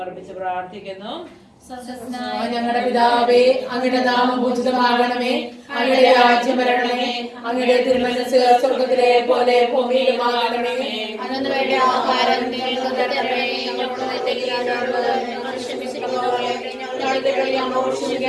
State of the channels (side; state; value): both; identical; correlation 1.00